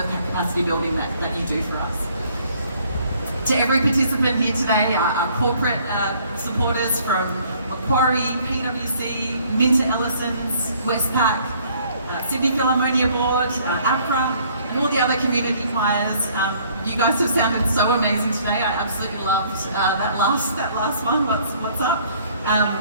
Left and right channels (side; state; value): both; inverted; correlation -0.60